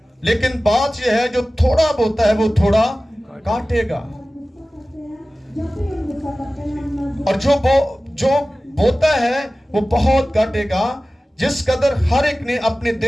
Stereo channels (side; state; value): both; normal; correlation 0.96